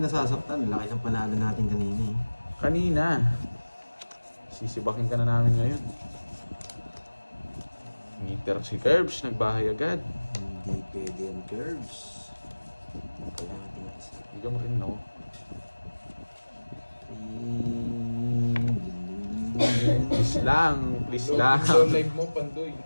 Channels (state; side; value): inverted; both; correlation -1.00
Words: nasasaktan. Laki ng panalo natin kanina eh. Kanina. Sisibakin ka na namin ngayon. Meter si Curbs, nagbahay agad. Hindi pwede yung curves. Kailangan natin isa. Bigyan mo rin, no? Please lang, please lang. Load live mo, Pandoy.